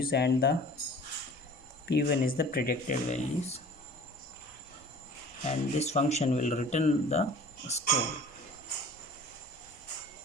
and the p1 is the predicted values, and this function will return the score.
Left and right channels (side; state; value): both; normal; correlation 0.45